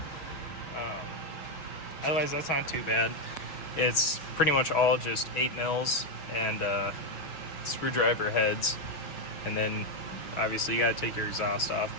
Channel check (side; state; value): right; late; 6.2 ms